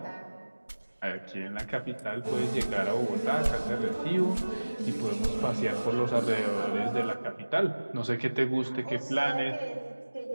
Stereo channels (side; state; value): both; inverted; correlation -1.00